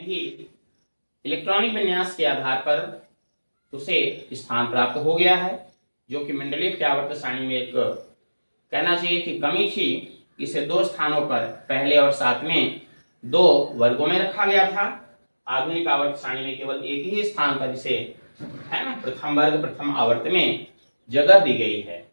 ही इलेक्ट्रॉनिक विन्यास के आधार पर उसे स्थान प्राप्त हो गया है, जो कि मेंडलीव के आवर्त सारणी में एक कहना चाहिए कि कमी थी। इसे 2 स्थानों पर पहले और 7 में 2 वर्गों में रखा गया था। आधुनिक आवर्त सारणी में केवल एक ही स्थान पर इसे, है ना, प्रथम वर्ग प्रथम आवर्त में जगह दी गई है।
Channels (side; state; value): both; inverted; correlation -1.00